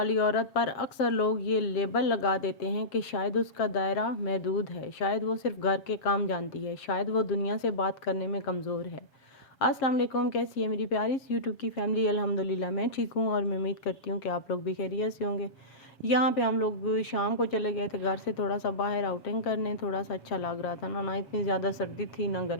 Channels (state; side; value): late; right; 7.4 ms